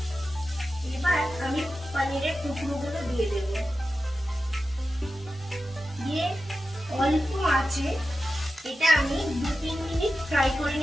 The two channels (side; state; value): both; normal; correlation 0.92